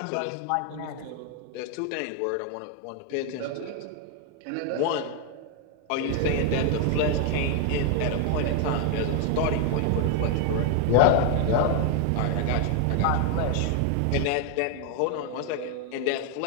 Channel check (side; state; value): both; different; correlation 0.00